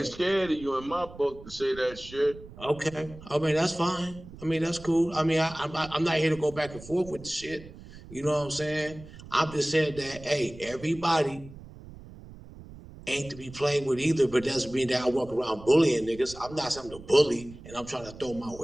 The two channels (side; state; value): right; noise; rumble, 17 dB below the sound